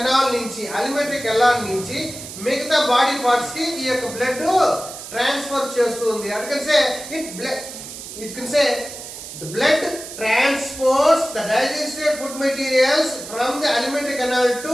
నుంచి మిగతా బాడీ పార్ట్స్ కి ఈ యొక్క బ్లడ్ ట్రాన్స్ఫర్ చేస్తుంది. It can say the blood transports the digested food materials from the alimentary canal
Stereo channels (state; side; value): noise; right; hiss, 11 dB below the sound